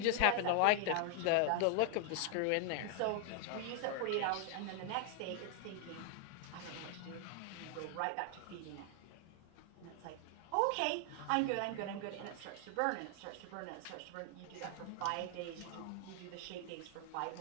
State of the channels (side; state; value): both; different; correlation 0.00